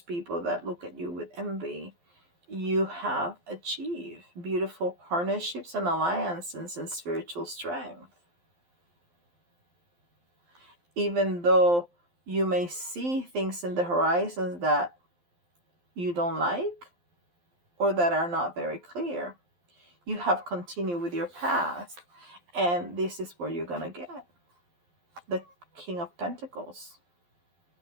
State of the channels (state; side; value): late; left; 12 ms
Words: that look at you with envy, you have achieved beautiful partnerships and alliances and spiritual strength. Even though you may see things in the horizons that you don't like or that are not very clear, you have continued with your path. And this is where you're going to get the King of Pentacles.